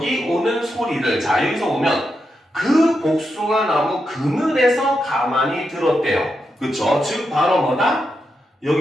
오는 소리를. 자, 여기서 보면 그 복숭아 나무 그늘에서 가만히 들었대요. 그쵸? 즉 바로 뭐다?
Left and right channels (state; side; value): normal; both; correlation 0.85